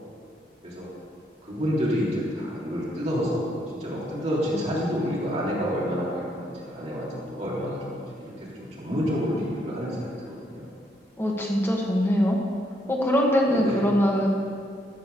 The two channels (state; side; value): normal; both; correlation 0.73